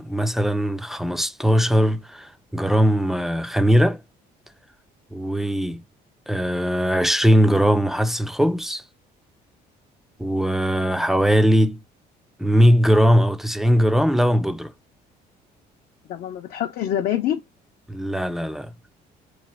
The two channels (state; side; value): normal; both; correlation 0.91